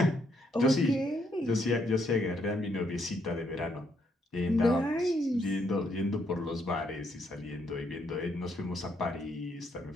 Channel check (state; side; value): normal; both; correlation 0.74